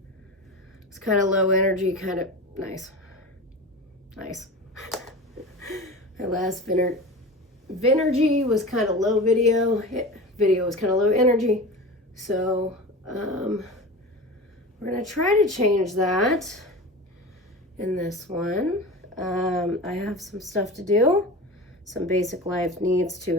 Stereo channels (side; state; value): both; normal; correlation 0.31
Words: was kind of low energy, kind of nice. My last Vinergy was kind of low video was kind of low energy. So we're gonna try to change that in this one. I have some stuff to do, some basic life needs to